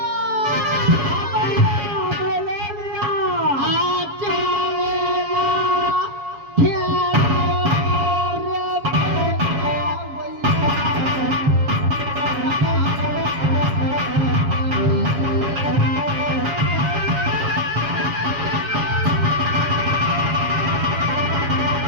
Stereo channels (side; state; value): left; late; 7.2 ms